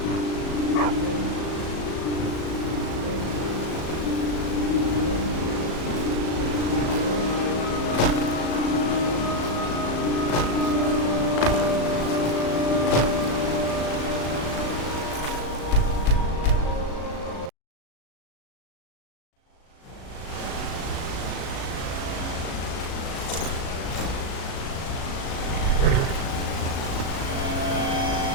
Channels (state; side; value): late; right; 37 ms